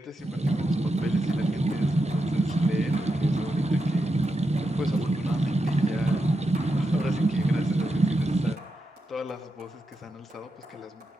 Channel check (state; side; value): normal; both; correlation 0.87